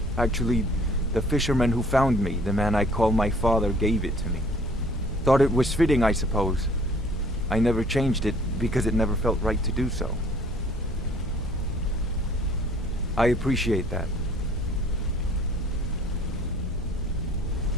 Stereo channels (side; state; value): both; normal; correlation 0.55